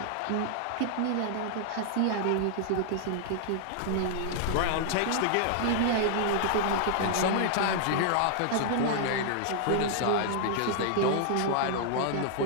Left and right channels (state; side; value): different; both; correlation -0.01